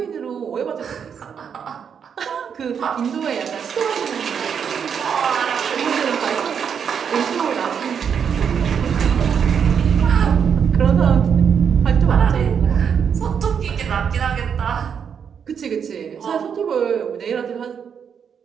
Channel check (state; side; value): quieter; left; 7.3 dB